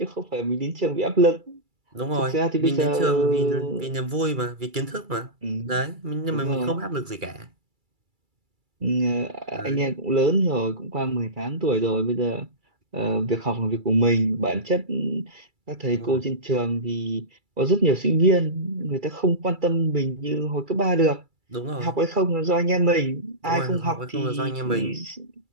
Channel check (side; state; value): left; late; 2.3 ms